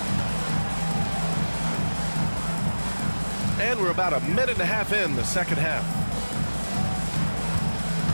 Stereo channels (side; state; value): both; inverted; correlation -1.00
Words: And we're about a minute and a half in the second half.